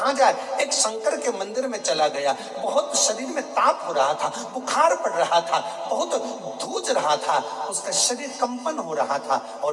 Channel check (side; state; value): both; identical; correlation 1.00